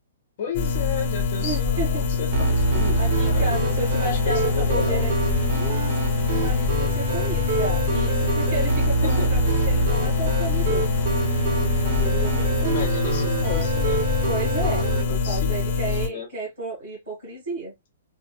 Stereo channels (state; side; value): inverted; both; correlation -0.36